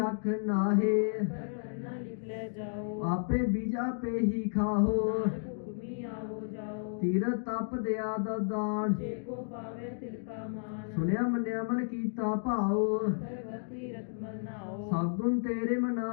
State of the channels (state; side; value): silent; right; digital silence